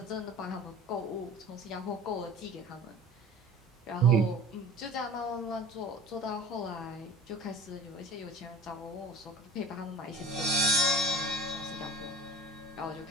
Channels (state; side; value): normal; both; correlation 0.41